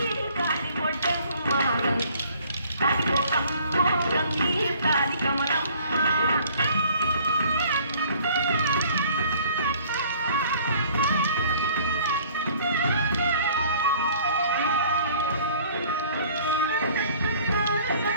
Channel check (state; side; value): inverted; both; correlation -0.54